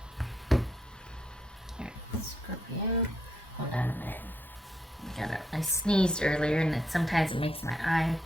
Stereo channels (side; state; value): both; normal; correlation 0.77